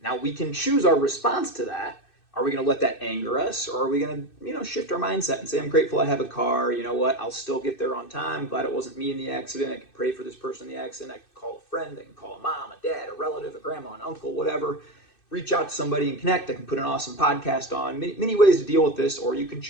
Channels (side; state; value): right; late; 2.6 ms